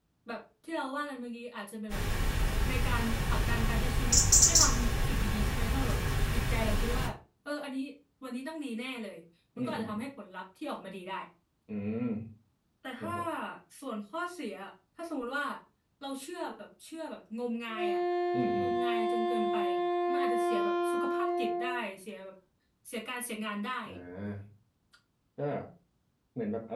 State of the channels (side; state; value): both; identical; correlation 1.00